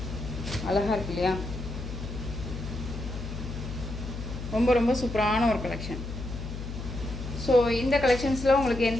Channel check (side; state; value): left; noise; hum, 7 dB below the sound